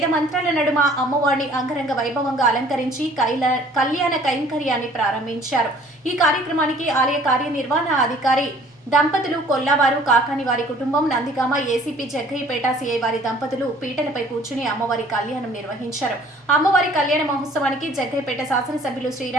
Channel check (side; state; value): both; normal; correlation 0.55